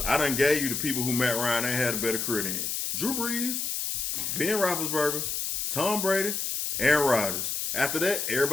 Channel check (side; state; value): left; noise; hiss, 2 dB below the sound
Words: I done gave you the people who Matt Ryan ain't had a better career than Drew Brees, Ben Roethlisberger, Tom Brady, Aaron Rodgers. After that,